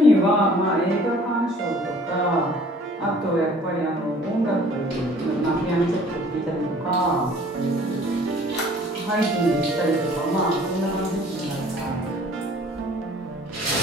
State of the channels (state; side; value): normal; both; correlation 0.53